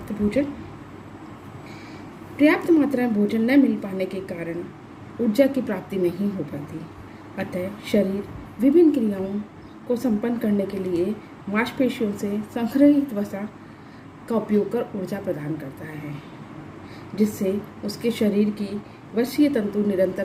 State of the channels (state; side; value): identical; both; correlation 1.00